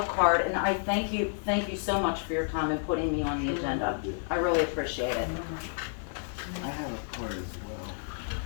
card, and I thank you so much for your time and putting me on the agenda. I really appreciate it. I have a card as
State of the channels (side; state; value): right; silent; 58 dB below the other